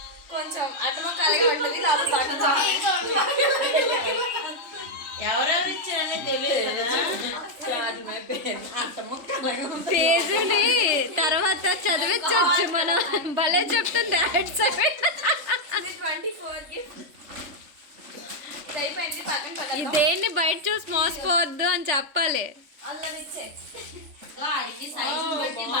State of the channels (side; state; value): left; late; 3.4 ms